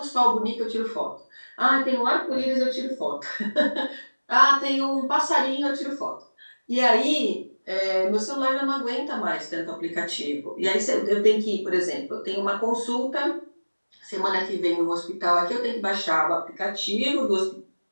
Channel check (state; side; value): inverted; both; correlation -1.00